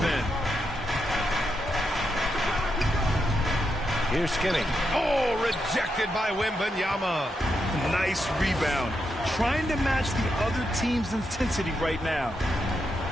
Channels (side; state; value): both; normal; correlation 0.83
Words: end. Here's Skinny. Oh, rejected by Wembanyama. Nice rebound. Trying to match the other team's intensity right now.